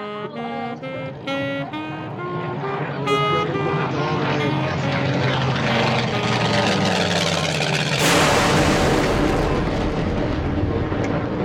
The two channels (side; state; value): both; identical; correlation 1.00